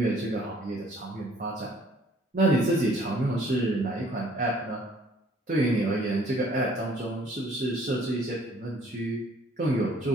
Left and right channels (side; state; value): both; normal; correlation 0.59